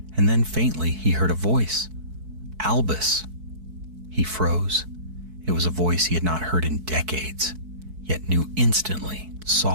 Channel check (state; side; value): late; left; 4.6 ms